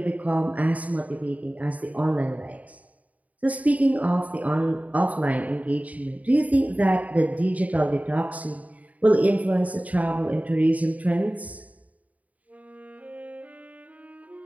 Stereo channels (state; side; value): late; left; 0.071 ms